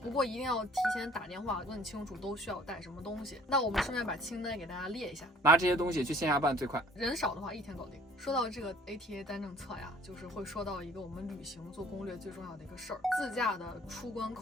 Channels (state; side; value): normal; both; correlation 0.54